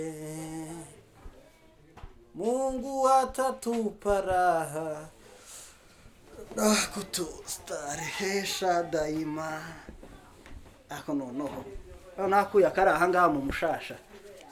Mungu atatupa raha na kutustarehesha daima. Ako noneho nakuya karaha ngaha mu mushasha,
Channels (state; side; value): identical; both; correlation 1.00